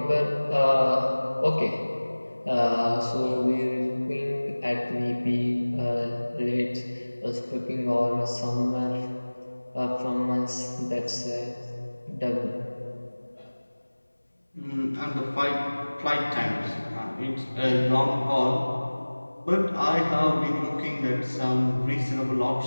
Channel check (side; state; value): both; inverted; correlation -1.00